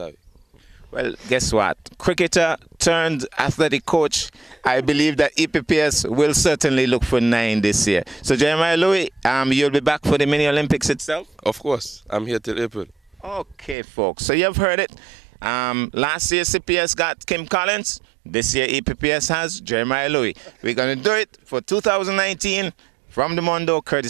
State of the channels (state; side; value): drops out; left; at 13.8 s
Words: Well, guess what? Cricketer turned athletic coach. I believe that EPPS will certainly look for 9 this year. So Jeremiah Louis, you'll be back for the Mini Olympics itself? Of course. I'm here till April. Okay, folks. So you've heard it. Last year CPS got Kim Collins. This year EPPS has Jeremiah Louis. We're going to do it for 2019. From the Mondo,